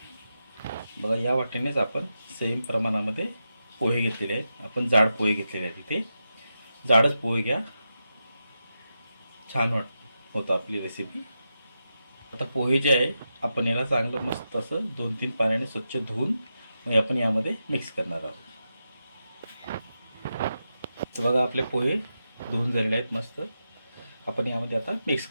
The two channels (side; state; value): both; inverted; correlation -0.88